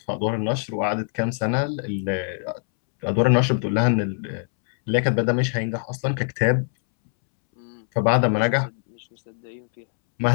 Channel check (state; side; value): silent; right; 63 dB below the other